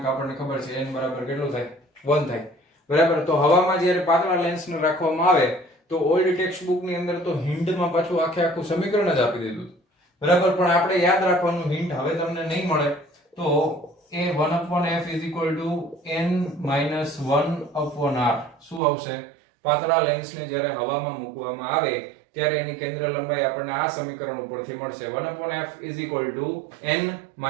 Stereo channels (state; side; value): drops out; left; at 18.8 s